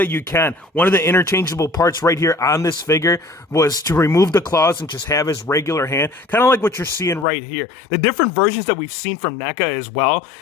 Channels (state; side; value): drops out; right; at 7.2 s